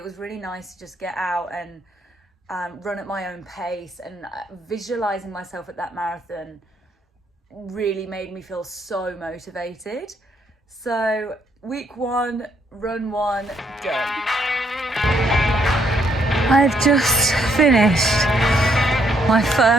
was really nice to just get out and run at my own pace, and visualizing myself at that marathon really made me feel so motivated. So week 1, run 1, done. I've just finished my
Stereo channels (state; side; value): normal; both; correlation 0.71